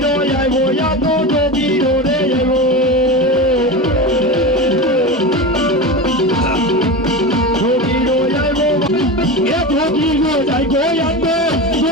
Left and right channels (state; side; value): normal; both; correlation 0.24